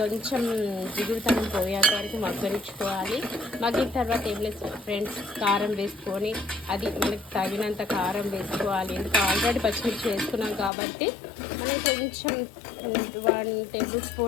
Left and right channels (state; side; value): drops out; right; at 10.7 s